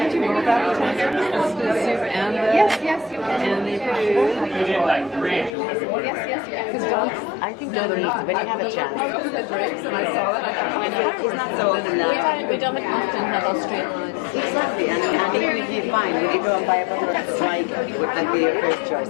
do both appetizers? The soup and the... Yes, you can. And the food? Yes. Because dogs... I think no, they're not. When you have a chance. I was the drapes and I saw it. I thought, he's not so old enough. We don't often have Austrian lines. Exactly, and even if you find, if you go and buy a bottle of like, would that be your first choice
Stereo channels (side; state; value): right; drops out; at 5.6 s